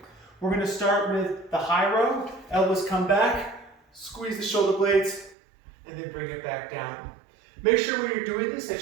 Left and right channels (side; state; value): left; drops out; at 5.4 s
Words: We're going to start with the high row. Elbows come back, squeeze the shoulder blades, and then bring it back down. Make sure when you're doing this